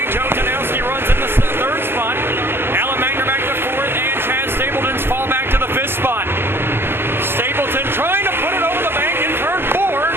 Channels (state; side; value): late; left; 0.11 ms